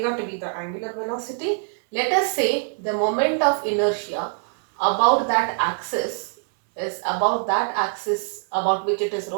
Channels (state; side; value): silent; left; 63 dB below the other